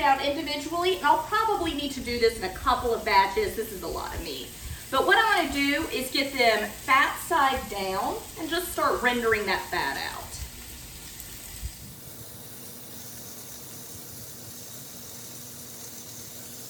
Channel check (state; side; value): identical; both; correlation 1.00